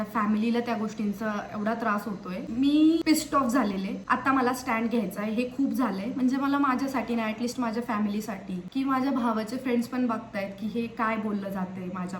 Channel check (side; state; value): both; identical; correlation 1.00